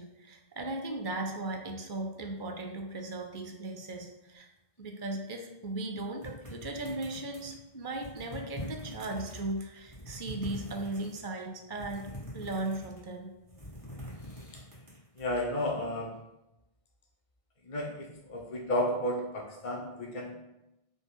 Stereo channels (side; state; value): right; late; 1.6 ms